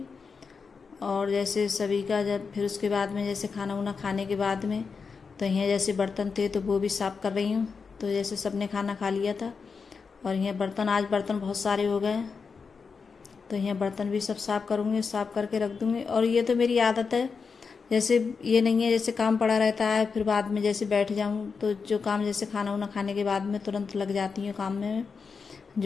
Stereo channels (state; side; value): quieter; right; 5.3 dB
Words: और जैसे सभी का जब फिर उसके बाद में जैसे खाना वाना खाने के बाद में तो यहाँ जैसे बर्तन थे तो वो भी साफ़ कर रही हूँ। तो जैसे सबने खाना खा लिया था और यहाँ आज बर्तन बहुत सारे हो गए, तो यहाँ बर्तन भी सब साफ़ करूँगी, साफ़ करके रख दूँगी। और ये तो मेरी आदत है, जैसे ये नहीं है जैसे काम पड़ा रहता है फिर बाद में जैसे बैठ जाऊँ, तो जो काम जैसे खाना वाना खाने के बाद में तुरंत लग जाती हूँ काम में।